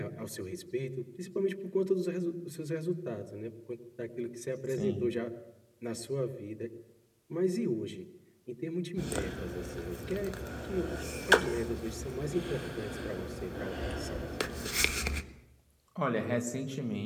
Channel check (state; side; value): identical; both; correlation 1.00